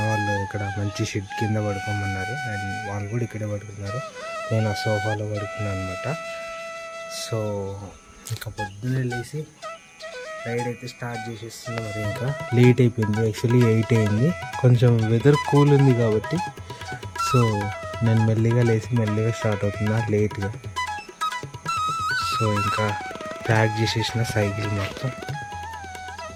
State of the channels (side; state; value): both; identical; correlation 1.00